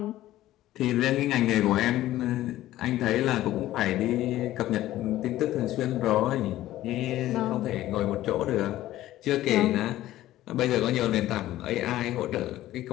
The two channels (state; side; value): quieter; right; 14.7 dB